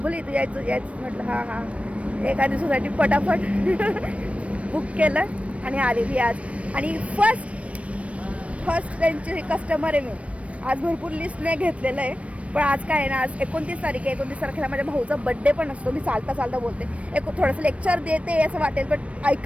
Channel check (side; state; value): left; late; 0.063 ms